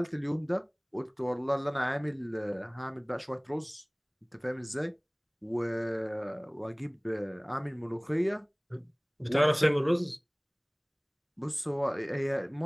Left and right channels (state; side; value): identical; both; correlation 1.00